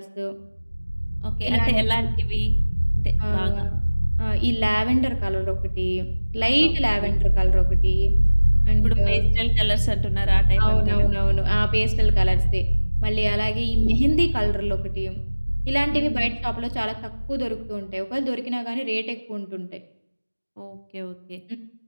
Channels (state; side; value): inverted; both; correlation -1.00